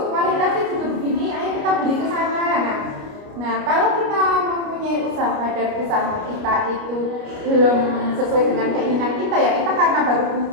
kualitasnya juga begini, ayo kita beli ke sana. Nah, kalau kita mempunyai usaha dan usaha kita itu belum sesuai dengan keinginan kita, ya kita karena baru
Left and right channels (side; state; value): left; late; 29 ms